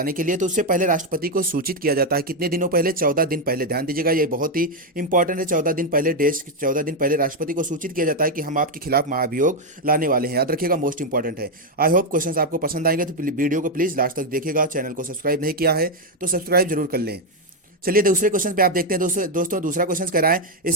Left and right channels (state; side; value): normal; both; correlation 0.03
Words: के लिए। तो उससे पहले राष्ट्रपति को सूचित किया जाता है। कितने दिनों पहले? 14 दिन पहले। ध्यान दीजिएगा, ये बहुत ही इंपॉर्टेंट है। 14 दिन पहले, डेज 14 दिन पहले राष्ट्रपति को सूचित किया जाता है कि हम आपके खिलाफ महाभियोग लाने वाले हैं। याद रखिएगा, मोस्ट इंपॉर्टेंट है। आई होप क्वेश्चंस आपको पसंद आएंगे, तो वीडियो को प्लीज लास्ट तक देखिएगा। चैनल को सब्सक्राइब नहीं किया है तो सब्सक्राइब जरूर कर लें। चलिए दूसरे क्वेश्चन पे आप देखते हैं दोस्तों दूसरा क्वेश्चन कह रहा है,